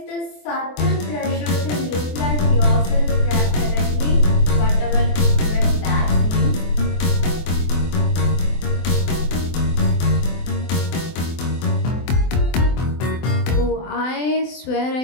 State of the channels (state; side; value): late; right; 24 ms